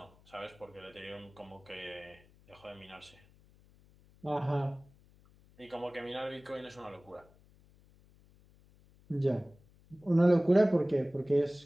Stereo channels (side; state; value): left; noise; hum, 28 dB below the sound